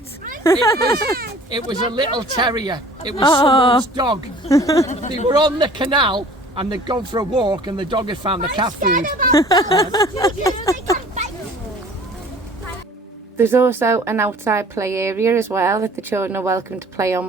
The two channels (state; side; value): normal; both; correlation 0.49